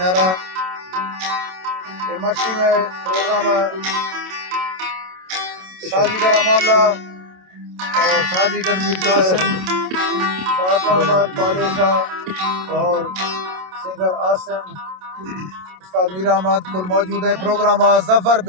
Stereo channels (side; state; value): left; late; 27 ms